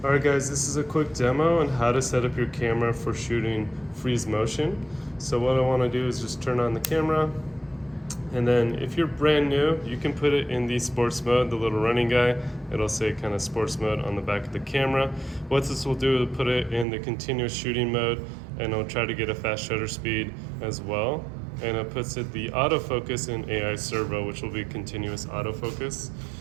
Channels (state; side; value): drops out; left; at 16.9 s